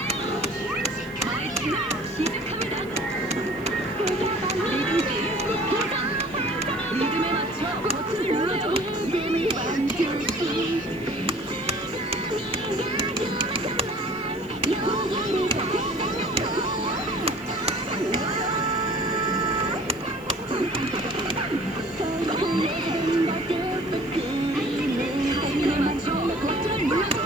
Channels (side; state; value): right; noise; hiss, 26 dB below the sound